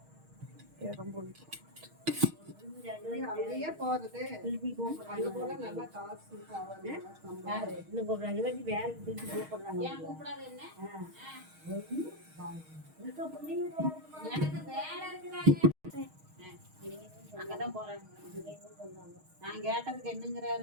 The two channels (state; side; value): late; left; 6.4 ms